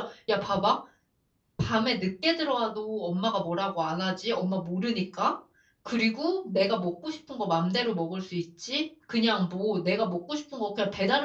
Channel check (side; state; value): both; identical; correlation 1.00